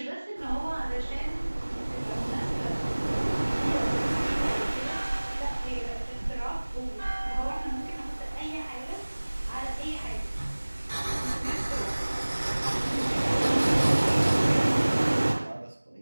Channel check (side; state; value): both; inverted; correlation -1.00